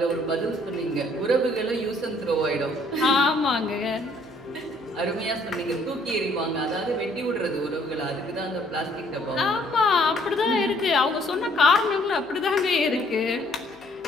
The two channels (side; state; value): both; normal; correlation 0.63